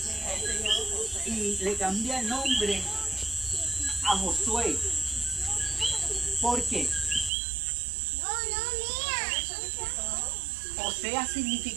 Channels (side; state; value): left; drops out; at 7.3 s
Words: y le cambia el nombre a Josué. ¿Por qué? Osea